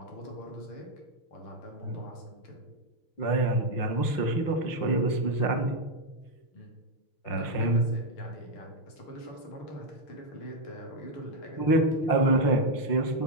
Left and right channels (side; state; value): right; late; 5.8 ms